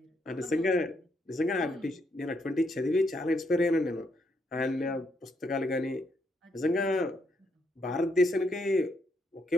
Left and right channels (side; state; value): both; normal; correlation 0.76